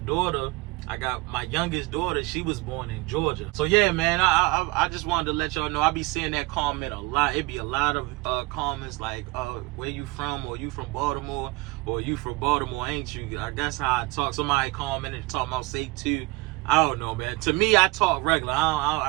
I got my youngest daughter, she was born in Georgia. So yeah, man, I just wanted to let y'all know, I be seeing that comment a lot. It be a lot of comments like, where you from, or you from Baltimore, or you from Baltimore, ain't you? I guess how I talk. Somebody commented talking about say two. I don't know, man. To me, I talk regular.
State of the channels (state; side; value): quieter; left; 23.3 dB